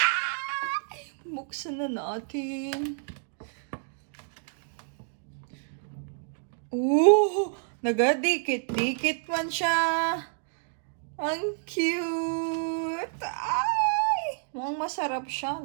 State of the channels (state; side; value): silent; left; digital silence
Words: Buksan na natin. Nagadikit-dikit man siya. Ang cute. Ay! Mukhang masarap siya,